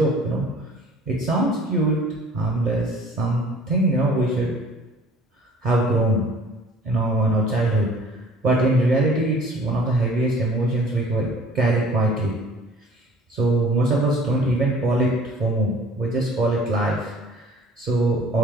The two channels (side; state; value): both; normal; correlation 0.51